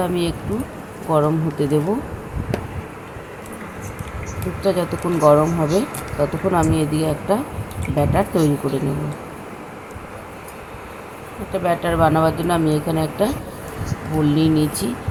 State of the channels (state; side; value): identical; both; correlation 1.00